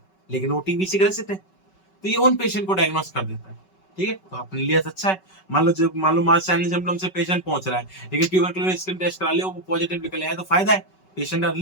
लेकिन वो टीबी से ग्रसित है, तो ये उन पेशेंट को डायग्नोस कर देता है। ठीक है, तो अपने लिए अच्छा है। मान लो मास साइन सिम्टम से पेशेंट पहुंच रहा है, लेकिन ट्यूबरकुलोसिस स्किन टेस्ट करा लिया, वो पॉजिटिव निकल आया, तो फायदा है, पेशेंट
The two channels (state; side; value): late; right; 5.3 ms